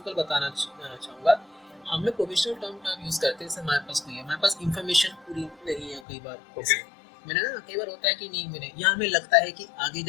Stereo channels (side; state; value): right; drops out; at 6.0 s